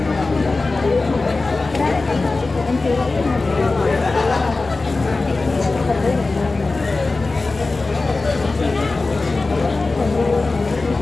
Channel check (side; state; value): right; quieter; 3.5 dB